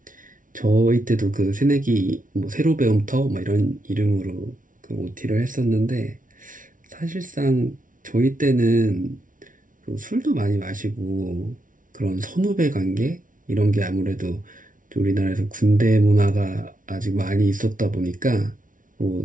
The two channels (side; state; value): left; late; 0.38 ms